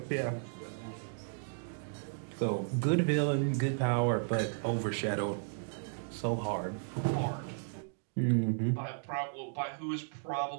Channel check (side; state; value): left; silent; digital silence